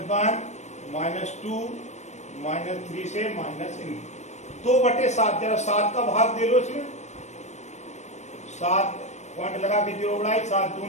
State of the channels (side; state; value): right; late; 0.33 ms